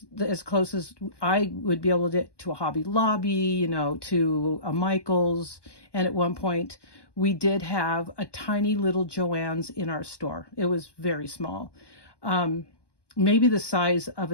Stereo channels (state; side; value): late; right; 1.2 ms